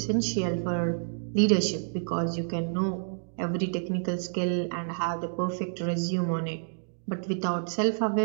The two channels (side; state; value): left; silent; digital silence